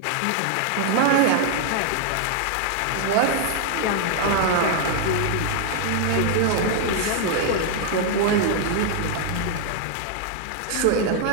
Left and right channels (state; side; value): different; both; correlation 0.00